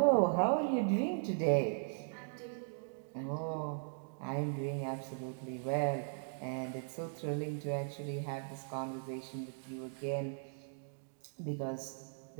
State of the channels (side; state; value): left; silent; digital silence